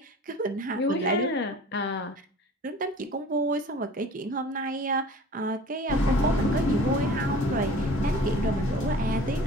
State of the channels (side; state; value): both; normal; correlation 0.44